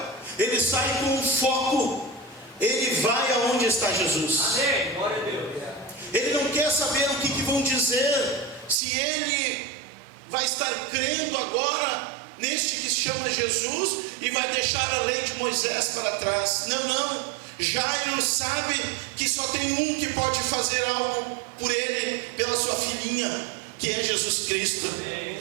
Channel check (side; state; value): left; drops out; at 8.8 s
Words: ele sai com um foco, ele vai aonde está Jesus. Amém, glória a Deus. Ele não quer saber o que vão dizer, se ele vai estar crendo agora neste que se chama Jesus e vai deixar a lei de Moisés para trás. Não, Jairo sabe que só tem um que pode fazer algo por ele, pela sua filhinha, que é Jesus Cristo.